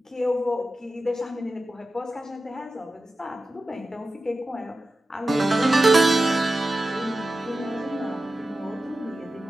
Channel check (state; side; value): normal; both; correlation 0.93